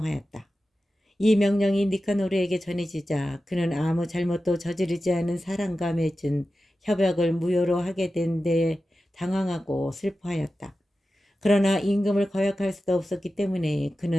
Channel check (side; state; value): both; normal; correlation 0.93